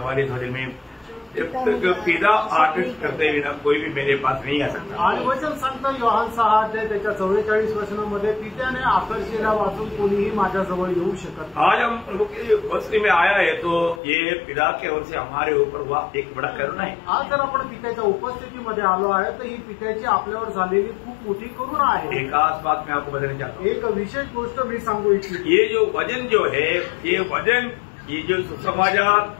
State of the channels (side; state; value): right; drops out; at 14.0 s